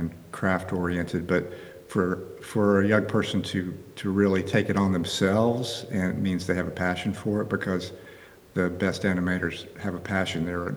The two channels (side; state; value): both; identical; correlation 1.00